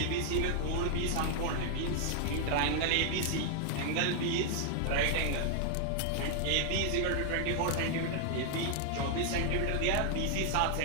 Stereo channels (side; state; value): both; different; correlation 0.00